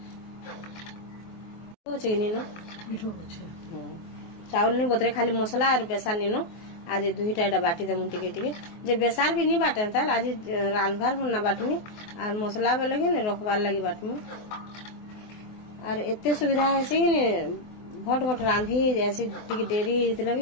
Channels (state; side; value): late; right; 24 ms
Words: चीनी नो मिठो छै चावल नहीं बतरे खाली मसला और बेसार नीनो आज 2टा बाटी दे मुंती के जे बेसार भी नहीं बाटे त आज रांधबार होना बाटमी और मसला में लगे ने रखबार लगी बाटमी और एते सुविधा है से ने भट रांधी जैसे टिके देरी इतने